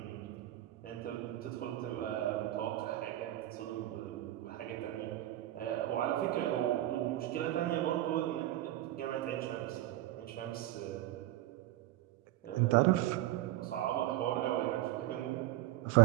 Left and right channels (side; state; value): left; quieter; 15.0 dB